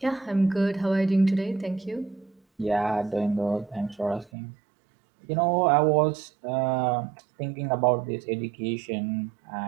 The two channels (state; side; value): drops out; left; at 4.3 s